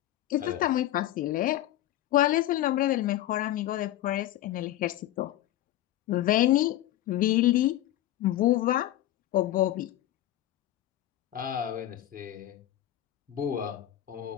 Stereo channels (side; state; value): right; quieter; 13.9 dB